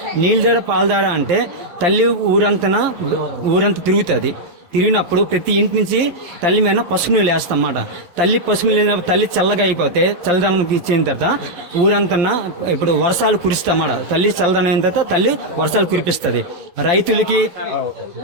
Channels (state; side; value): late; left; 11 ms